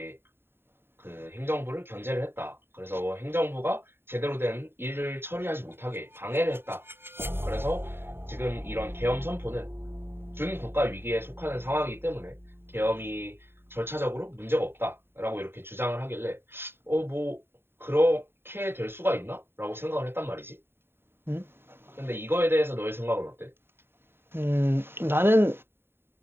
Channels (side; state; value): left; late; 0.11 ms